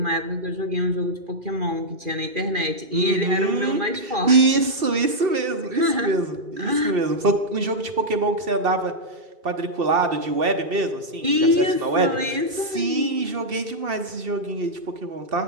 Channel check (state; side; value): late; left; 2.7 ms